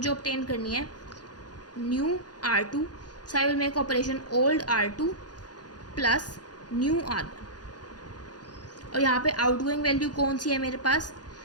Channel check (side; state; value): right; late; 0.69 ms